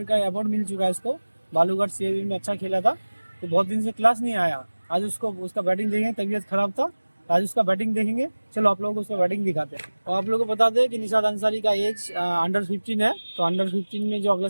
का अवार्ड मिल चुका है इसको, बालूघाट सीएबी में अच्छा खेला था। तो बहुत दिन से क्लास नहीं आया, आज उसका बैटिंग देखेंगे, तबीयत खराब था, तो आज उसका बैटिंग देखेंगे। चलो आप लोगों को उसका बैटिंग दिखाते हैं। और आप लोगों को बता दें कि निशाद अंसारी का एज अंडर 15 है। तो अंडर 15 में जो अगला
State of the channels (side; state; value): both; inverted; correlation -1.00